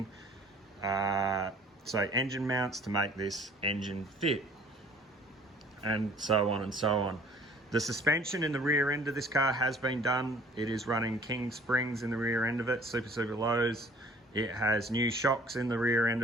So engine mounts to make this engine fit, and so on and so on. The suspension in the rear end of this car has been done. It is running King springs in the rear end of it, super lows. It has new shocks in the rear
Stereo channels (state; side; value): normal; both; correlation 0.53